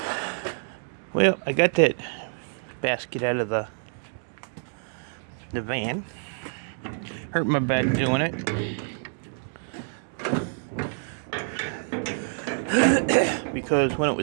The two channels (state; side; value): silent; left; 60 dB below the other